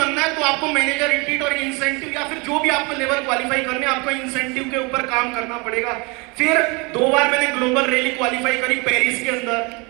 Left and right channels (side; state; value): left; quieter; 28.5 dB